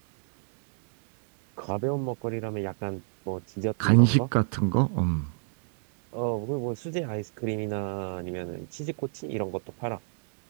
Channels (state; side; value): silent; left; digital silence